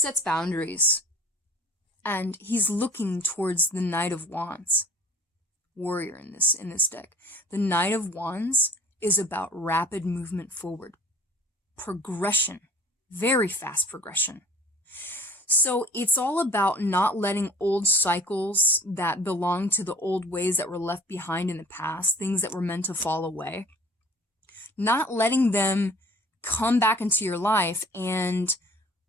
boundaries, and he's looking towards the Knight of Wands warrior in this deck. The Knight of Wands is about rapid movement forward, progression, very fast progression. So it's all about not letting old cycles that belong to the old ways that were left behind in the past, things that were meant to fall away, not letting them come back into your life and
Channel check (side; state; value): both; normal; correlation 0.48